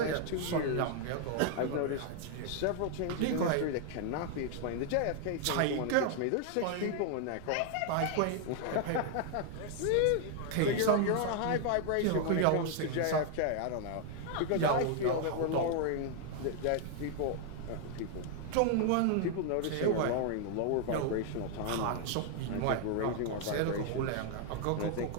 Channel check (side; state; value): both; different; correlation 0.00